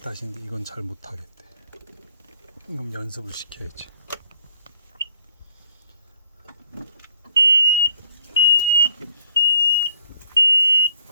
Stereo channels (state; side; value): inverted; both; correlation -0.63